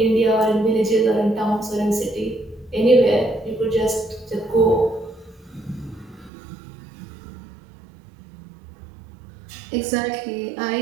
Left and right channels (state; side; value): drops out; left; at 6.3 s